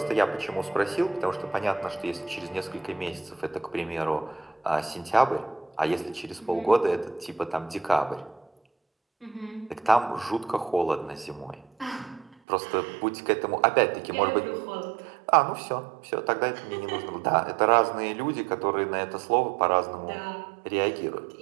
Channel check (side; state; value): left; drops out; at 12.4 s